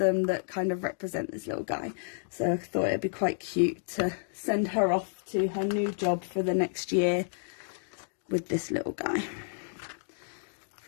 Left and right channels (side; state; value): right; silent; digital silence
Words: that kind of represent this little guy, so I thought it'd be quite cute to send her off to her new job for the next year with this little guy